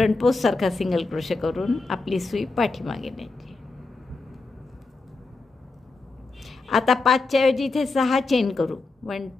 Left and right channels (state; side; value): quieter; right; 3.6 dB